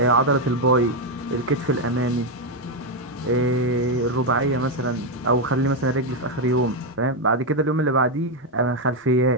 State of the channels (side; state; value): both; normal; correlation 0.04